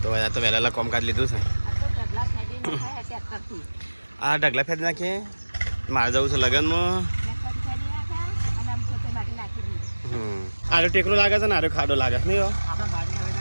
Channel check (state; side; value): inverted; both; correlation -1.00